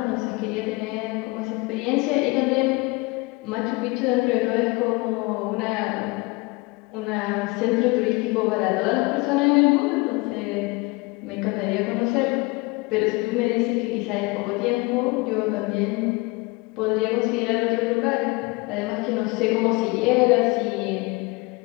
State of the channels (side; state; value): right; quieter; 25.5 dB